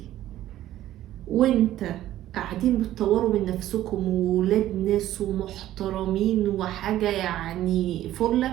وأنت قاعدين بتطوروا من نفسكم وولاد ناس ومحترمين وحاجة يعني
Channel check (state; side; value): quieter; left; 13.5 dB